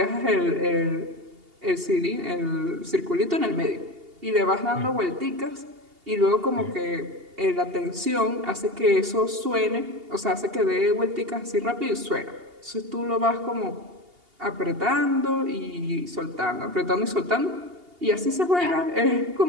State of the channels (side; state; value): left; late; 2.8 ms